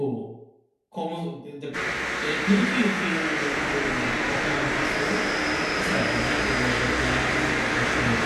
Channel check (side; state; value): both; identical; correlation 1.00